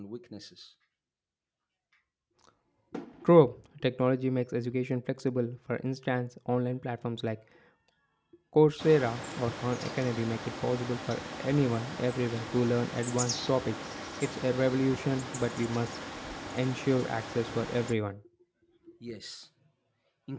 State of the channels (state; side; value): identical; both; correlation 1.00